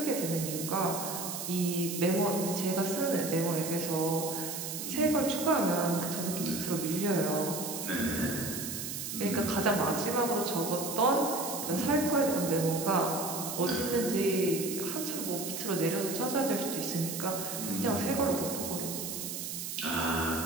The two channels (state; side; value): noise; right; hiss, 5 dB below the sound